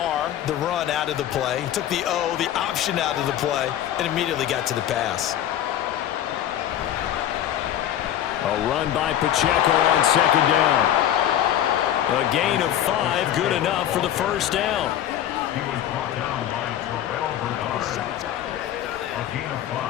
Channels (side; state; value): right; quieter; 11.3 dB